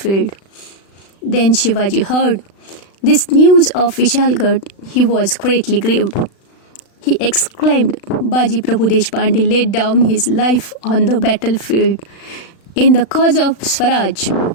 Then Shivaji heard this news of Vishalgarh. He was greatly grieved. He exclaimed, Baji Prabhu Deshpande laid down his life on the battlefield in the cause of Swaraj.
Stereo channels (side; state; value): right; late; 36 ms